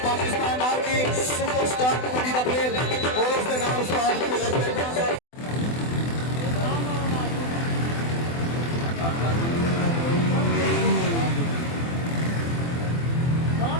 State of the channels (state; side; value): late; right; 24 ms